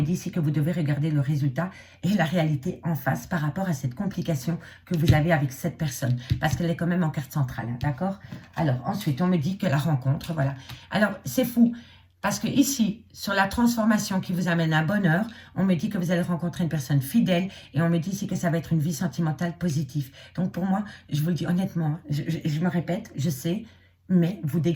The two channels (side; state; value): both; identical; correlation 1.00